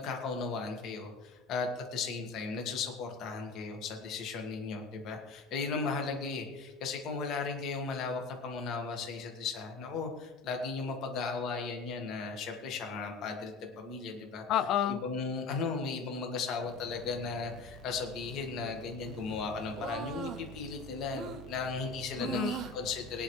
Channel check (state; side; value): quieter; right; 4.3 dB